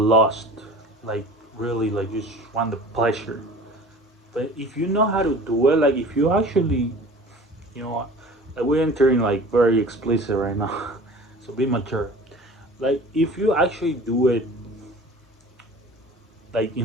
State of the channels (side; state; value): both; normal; correlation 0.42